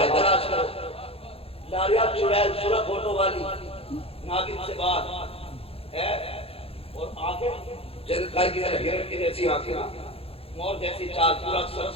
تلاش کرو لاریہ چڑیل سورہ فوٹو والی ناگن سے بات ہے اور آنکھیں جن کائی کی ہرن کی جیسی آنکھیں مور جیسی چال پورا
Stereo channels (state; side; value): late; right; 0.28 ms